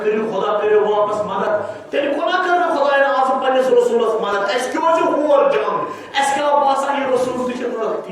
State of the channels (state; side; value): identical; both; correlation 1.00